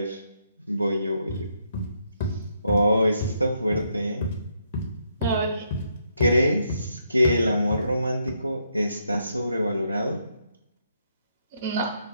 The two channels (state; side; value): inverted; both; correlation -0.76